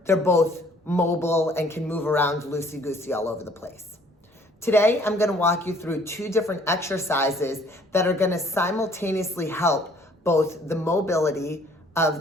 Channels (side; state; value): both; normal; correlation 0.58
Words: they're both mobile and can move around loosey-goosey all over the place. Today, I'm going to walk you through two different exercises that are going to simultaneously help both the mobility of